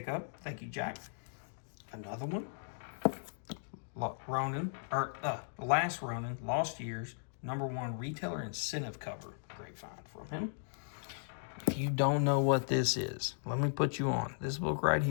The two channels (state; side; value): silent; right; digital silence